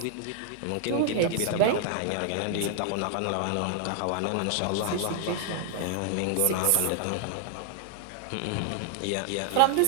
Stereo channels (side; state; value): both; different; correlation 0.00